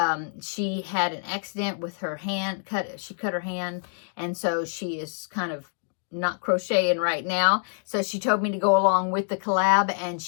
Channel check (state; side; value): silent; right; digital silence